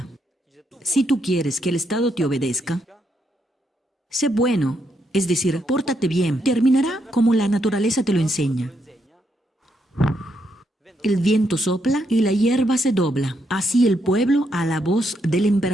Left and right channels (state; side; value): normal; both; correlation 0.78